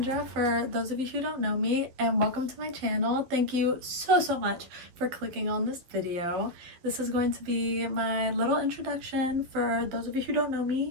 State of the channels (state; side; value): late; left; 12 ms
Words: for those of you who don't know me, and welcome to my channel. Thank you so much for clicking on this video. This is going to be my little introduction for those of you who don't know